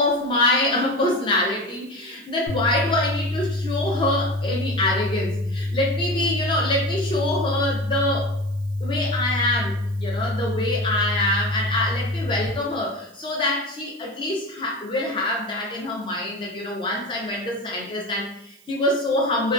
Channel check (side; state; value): right; noise; hiss, 28 dB below the sound